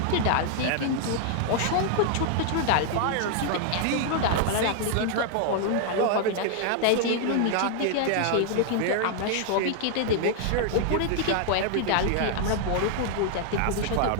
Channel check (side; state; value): both; different; correlation 0.00